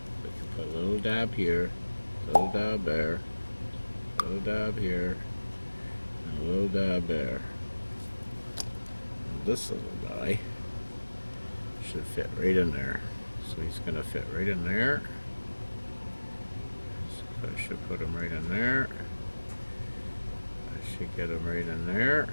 we can put a little dab here, a little dab there, a little dab here, and a little dab there. And this little guy should fit right in there. So he's going to fit right in there. So I should put him right in there. I should get him right in there.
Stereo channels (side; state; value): both; inverted; correlation -1.00